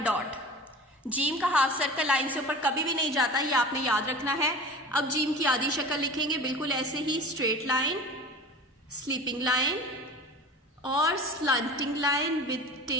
डॉट। जीम का हाफ सर्कल लाइन से ऊपर कभी भी नहीं जाता, ये आपने याद रखना है। अब जीम की आधी शक्ल लिखेंगे बिल्कुल ऐसे ही, स्ट्रेट लाइन, स्लीपिंग लाइन और स्लंटिंग लाइन विद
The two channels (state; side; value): normal; both; correlation 0.36